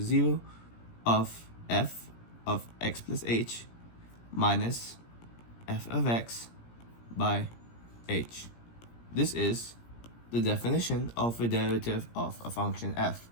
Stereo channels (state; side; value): late; right; 17 ms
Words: 0 of f of x plus h minus f of x by h. This is the definition of a derivative of a function f.